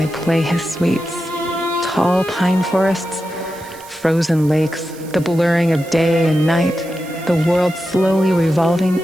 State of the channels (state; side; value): noise; right; hiss, 20 dB below the sound